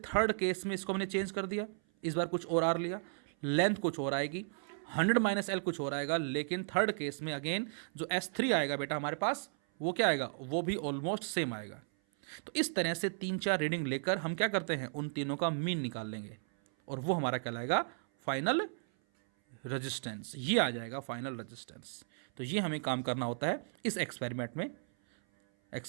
केस में इसको हमने चेंज कर दिया, इस बार कुछ और आर लिया, लेंथ कुछ और आएगी, 100 माइनस एल कुछ और आएगा। लेकिन थर्ड केस में अगेन जो S3 आएगा बेटा हमारे पास, वो क्या आएगा? वो भी ऑलमोस्ट सेम आएगा। तो इस तरह से 3-4 रीडिंग लेकर हम क्या करते हैं? उन तीनों का मीन निकाल लेंगे और वो हमारा कहलाएगा फाइनल रेजिस्टेंस। ये आ जाएगा फाइनल रेजिस्टेंस। तो ये हमें काम करना होता है इस एक्सपेरिमेंट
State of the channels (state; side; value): silent; left; 54 dB below the other